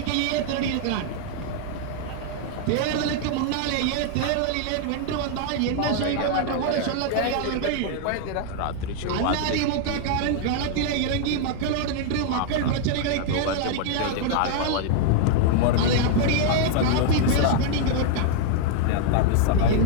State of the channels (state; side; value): different; both; correlation 0.00